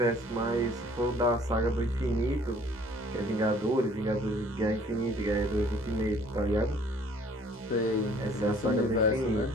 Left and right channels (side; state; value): both; normal; correlation 0.56